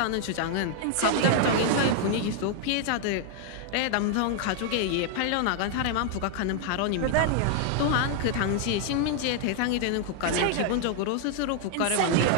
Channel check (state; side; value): different; both; correlation 0.00